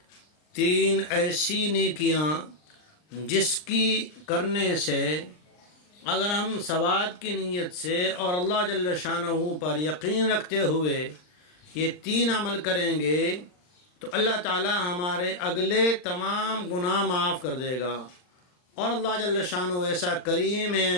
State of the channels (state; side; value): late; right; 39 ms